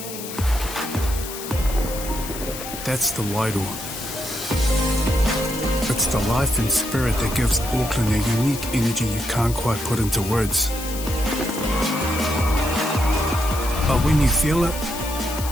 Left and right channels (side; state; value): left; noise; hiss, 10 dB below the sound